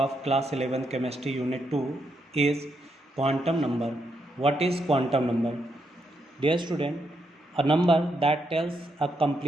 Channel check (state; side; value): normal; both; correlation 0.80